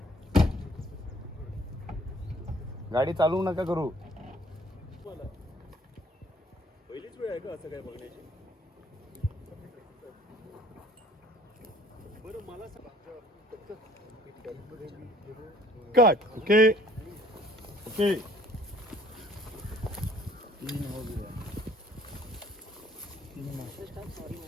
गाडी चालवू नका करू पहिलीच वेळ आहे का असं काय बघण्याची बरं मला कट ओके ओके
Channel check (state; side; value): normal; both; correlation 0.57